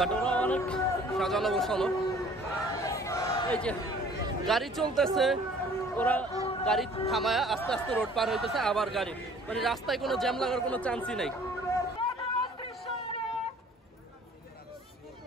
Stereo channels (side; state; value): both; normal; correlation 0.53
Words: ওরা অনেক সাজানো গোছানো, এই যে গাড়ি চলতেছে, ওরা গাড়ি থামায় আস্তে আস্তে রোড পার হইতেছে, আবার গাড়ি, মানে রাস্তায় কোনো জ্যাম লাগার কোনো চান্সই নাই।